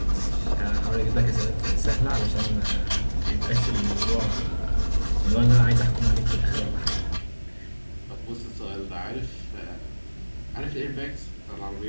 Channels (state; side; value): inverted; both; correlation -1.00